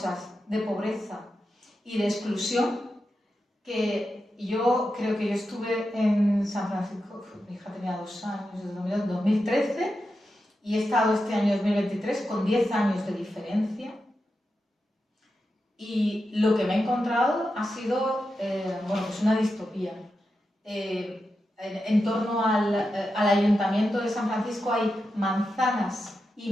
de pobreza y de exclusión que yo creo que yo estuve en San Francisco, mi hija tenía 2 años, desde 2013, y he estado este año 2023 con 10 años de diferencia. Y lo que me he encontrado ha sido pues una distopía. En torno al Ayuntamiento de San Francisco hay manzanas y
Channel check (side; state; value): both; normal; correlation 0.89